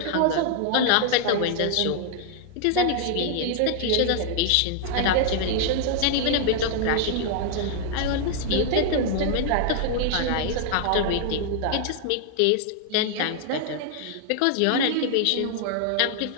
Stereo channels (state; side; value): different; both; correlation 0.00